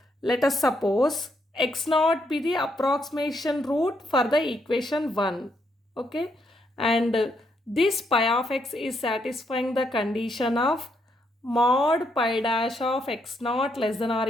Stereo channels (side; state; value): both; normal; correlation 0.76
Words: let us suppose x naught be the approximation root for the equation 1. Okay. And this pi of x is satisfying the condition of mod pi dash of x naught less than or